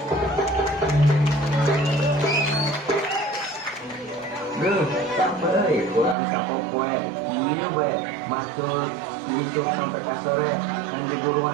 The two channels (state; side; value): drops out; left; at 6.2 s